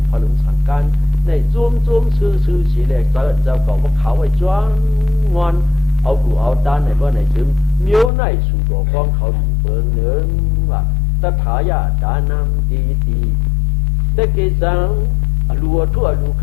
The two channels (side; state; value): right; drops out; at 8.1 s